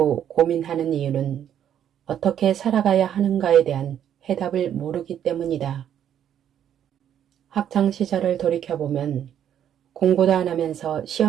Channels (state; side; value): quieter; left; 9.8 dB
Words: 고민하는 이유는 어떻게 살아가야 하는가에 대한 해답을 모르기 때문이다. 학창시절을 돌이켜보면 공부도 안 하면서